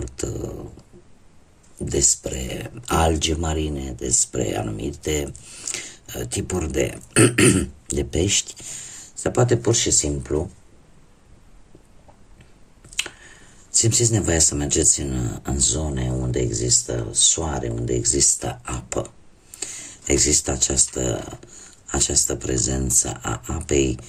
despre alge marine, despre anumite tipuri de pești, sau poate pur și simplu simțiți nevoia să mergeți în zone unde există soare, unde există apă. Există această prezență a apei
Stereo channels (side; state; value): both; identical; correlation 1.00